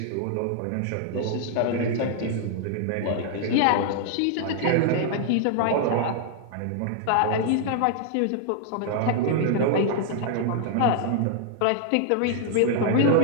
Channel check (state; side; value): different; both; correlation 0.00